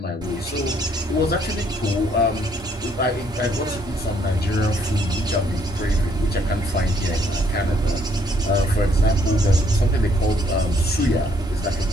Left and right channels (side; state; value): both; normal; correlation 0.67